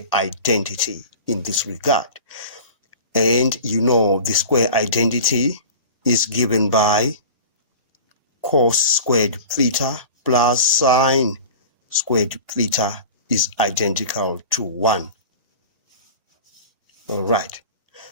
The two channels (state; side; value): inverted; both; correlation -0.38